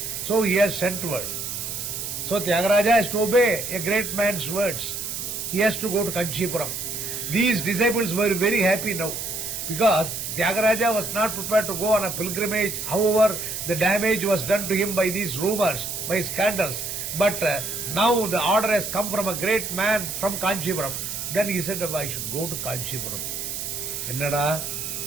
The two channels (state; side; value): noise; right; hiss, 5 dB below the sound